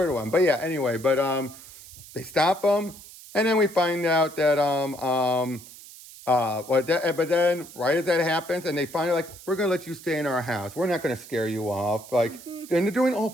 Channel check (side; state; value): right; noise; hiss, 18 dB below the sound